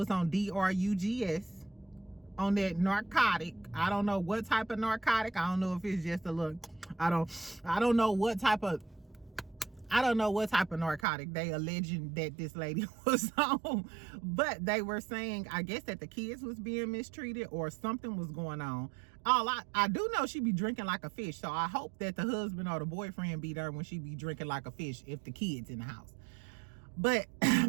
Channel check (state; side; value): drops out; left; at 11.1 s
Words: on DRUGS, on that narcotic. I don't know what type of narcotic. I don't know if it's just a little, I don't know what type of narcotic they alleging that this lady was on. But they were saying, I guess, that the kids was being mistreated or something was going on. I do know she be drinking like a fish, so I hope that the husband or the boyfriend be there when she be drinking like a fish if the kids in the house. But